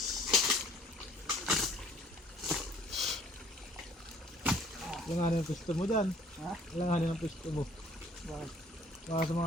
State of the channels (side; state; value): both; normal; correlation 0.57